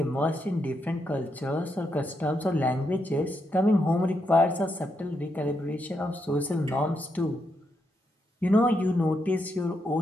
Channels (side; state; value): both; normal; correlation 0.81